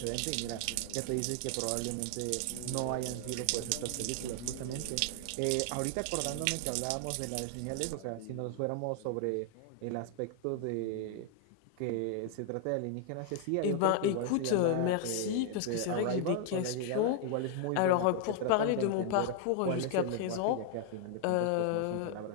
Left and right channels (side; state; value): both; different; correlation 0.00